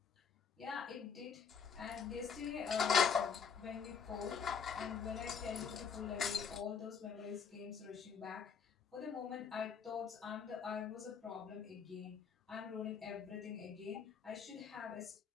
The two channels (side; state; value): right; quieter; 6.4 dB